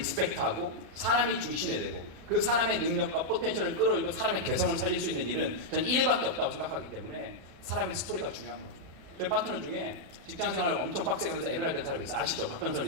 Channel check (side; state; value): left; late; 36 ms